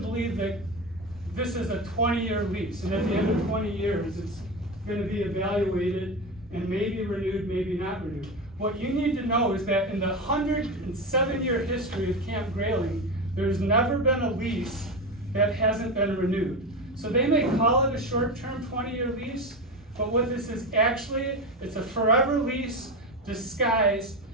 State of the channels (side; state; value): both; normal; correlation 0.20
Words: that this is a 20-year lease, and at the end of 20 years, it's going to be evaluated and maybe renewed, maybe not renewed. What you need to know is that in the 107-year history of Camp Grayling, there's never been a lease that hasn't been renewed. So they may call it a short-term 20-year lease, but what this is actually, it's a forever lease disguised